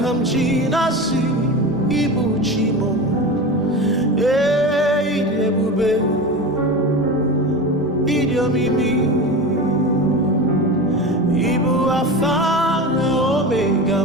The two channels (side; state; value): both; normal; correlation 0.27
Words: m ji na-asị Ibu Chi mo. Ịdị ebube, ịdị omimi, Ibu Alfa na Omega